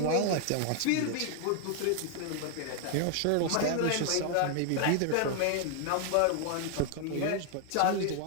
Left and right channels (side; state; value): both; different; correlation 0.00